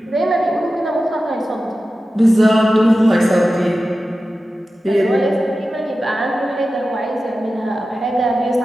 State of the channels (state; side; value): normal; both; correlation 0.94